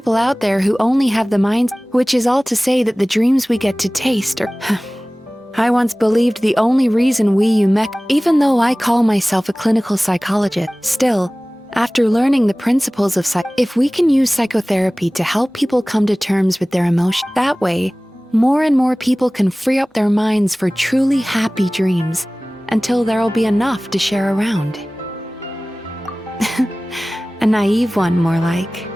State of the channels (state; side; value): normal; both; correlation 0.98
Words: out there who only have the minds, which is all to say that the dreams we get to taste are... I once believed the only reason even though I call myself a clinical psychologist, still, after learning the principles of if we can use psychotherapy to help people come to terms with their emotions, that way, more and more people can free up their minds for truly happy dreams, until there'll be enough to share around. A naive one, more like.